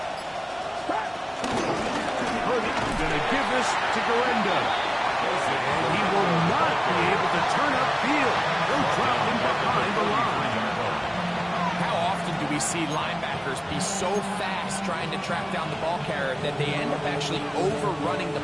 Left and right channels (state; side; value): identical; both; correlation 1.00